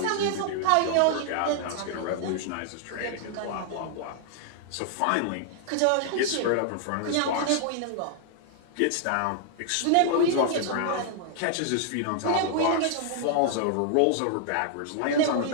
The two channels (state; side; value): different; both; correlation 0.00